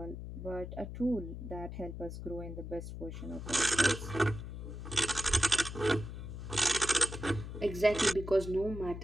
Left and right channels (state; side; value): noise; left; hum, 8 dB below the sound